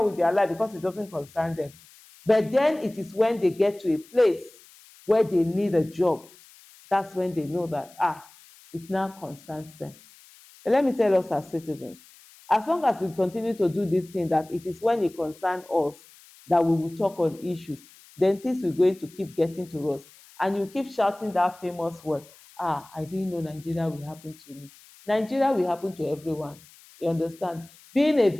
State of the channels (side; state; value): left; noise; hiss, 24 dB below the sound